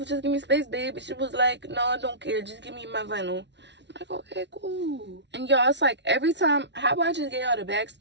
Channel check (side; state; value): left; late; 0.51 ms